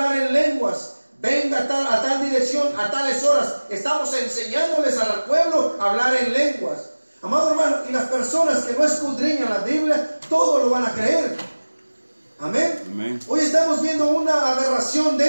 en lenguas, venga a tal dirección, a tales horas. Estamos enseñándoles al pueblo a hablar en lenguas. Amado hermano, y las personas que no escudriñan la Biblia, todo lo van a creer. Amén. Amén. Hoy estamos viendo una aberración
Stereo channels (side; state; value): both; inverted; correlation -1.00